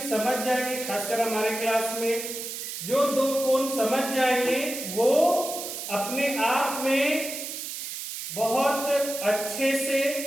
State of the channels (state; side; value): noise; right; hiss, 7 dB below the sound